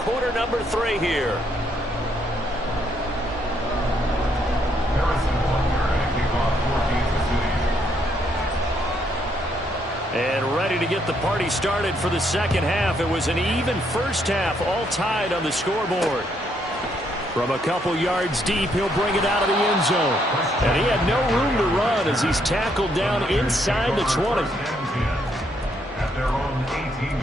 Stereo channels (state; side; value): normal; both; correlation 0.73